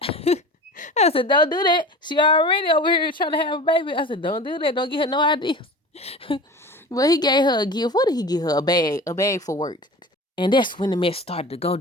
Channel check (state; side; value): normal; both; correlation 0.36